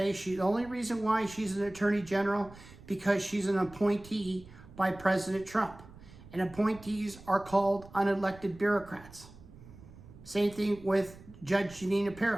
the only reason why she's an attorney general, because she's an appointee by President Trump. And appointees are called unelected bureaucrats. Same thing with Judge Janina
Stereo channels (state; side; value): noise; right; rumble, 19 dB below the sound